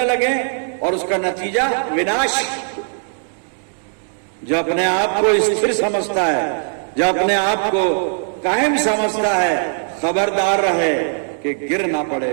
लगे, और उसका नतीजा विनाश। जो अपने आप को स्थिर समझता है, जो अपने आप को कायम समझता है, खबरदार रहे कि गिर ना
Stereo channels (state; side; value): silent; left; digital silence